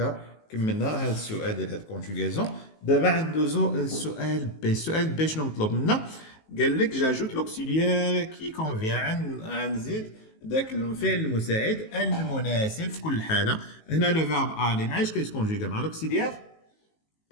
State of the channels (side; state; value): right; late; 19 ms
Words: كملنا هذا السؤال ديال هاد الكونجوغاسيون. دابا ندوزو للسؤال بي. السؤال بي شنو مطلوب منا؟ قال لك جاجوت لوكسيليير كي كونفيان. غنزيد داك الفعل المساعد المناسب في كل حاله. هنا لو فيرب الي معايش كيتكونجوغا مع لوكسيليير